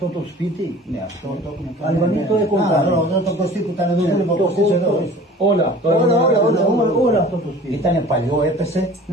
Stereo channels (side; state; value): both; normal; correlation 0.45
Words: το σπίτι? Ναι, αυτό το έχουμε κάνει. Αλβανοί το έχουν κάνει. Εδώ το Κωστή που ήταν εδώ, το Κωστής εδώ. Όλα αυτό το σπίτι. Ήτανε παλιό, έπεσε